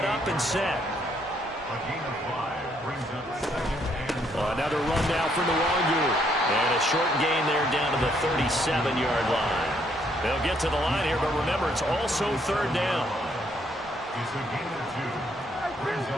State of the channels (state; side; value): normal; both; correlation 0.70